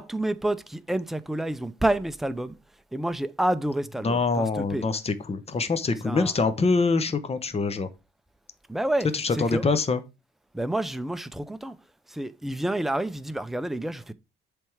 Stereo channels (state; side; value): normal; both; correlation 0.76